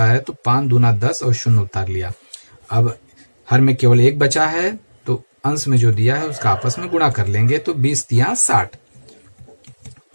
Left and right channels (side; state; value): both; inverted; correlation -1.00